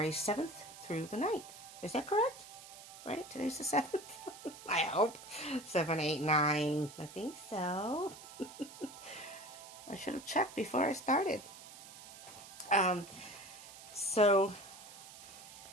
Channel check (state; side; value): noise; right; hiss, 16 dB below the sound